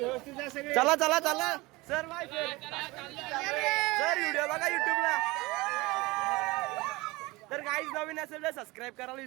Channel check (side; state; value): left; quieter; 22.2 dB